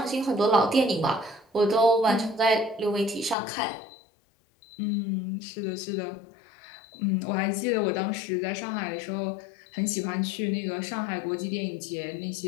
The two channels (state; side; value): drops out; right; at 3.4 s